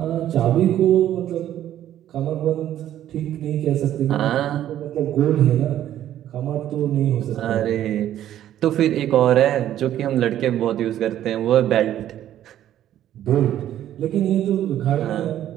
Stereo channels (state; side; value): quieter; left; 11.8 dB